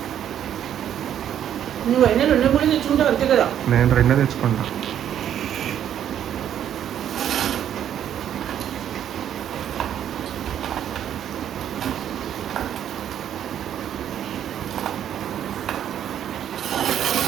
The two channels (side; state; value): left; quieter; 10.1 dB